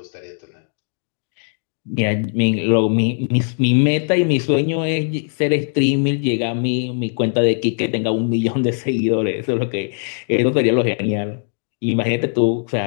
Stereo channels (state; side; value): silent; right; 66 dB below the other